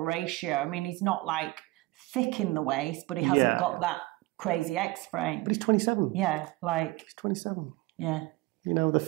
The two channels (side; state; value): left; quieter; 20.4 dB